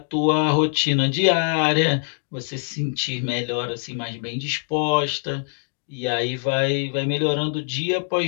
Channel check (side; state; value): right; silent; digital silence